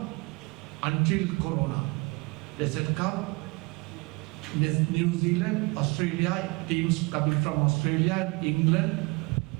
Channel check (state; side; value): quieter; left; 26.9 dB